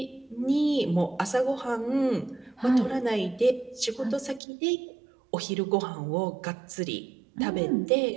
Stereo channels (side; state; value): left; drops out; at 4.4 s